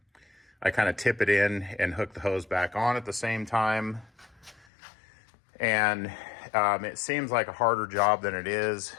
I kind of tip it in and hook the hose back on at the same time. And it seems like a harder job than it is,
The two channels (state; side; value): drops out; right; at 4.7 s